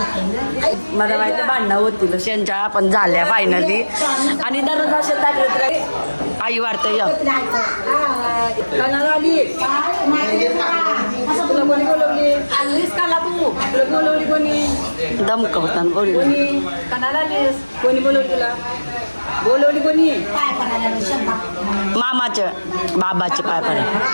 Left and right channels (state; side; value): inverted; both; correlation -1.00